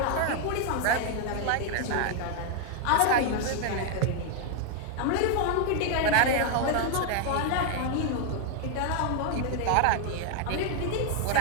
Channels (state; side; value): different; both; correlation 0.00